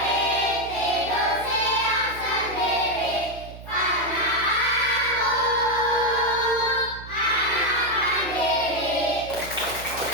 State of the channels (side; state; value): right; noise; hum, 15 dB below the sound